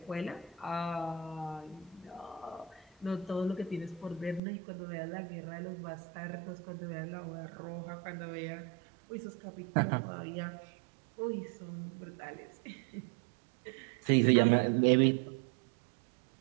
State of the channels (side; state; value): left; drops out; at 4.4 s